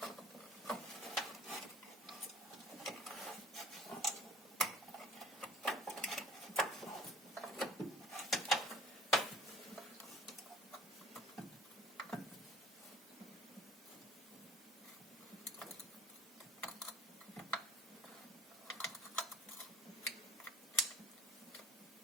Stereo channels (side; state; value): both; normal; correlation 0.49